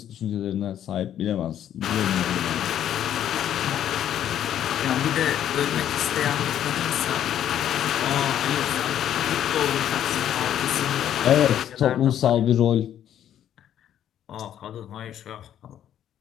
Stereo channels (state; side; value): quieter; right; 10.6 dB